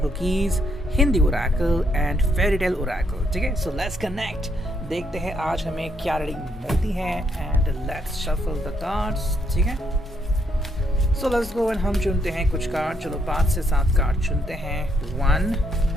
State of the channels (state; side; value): normal; both; correlation 0.74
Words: cookies, Hindi Oracle and fairy tale Oracle. ठीक है, सो लेट्स कनेक्ट, देखते हैं आज हमें क्या रीडिंग मिलती है and let's shuffle the cards. ठीक है, सो लेट्स गो एंड हम चुनते हैं कुछ कार्ड। चलो 5 से 7 कार्ड चुनते हैं। 1